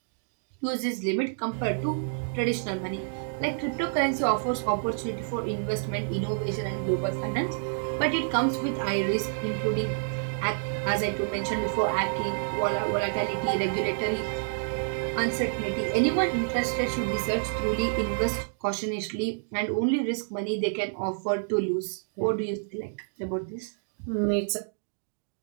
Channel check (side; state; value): left; silent; digital silence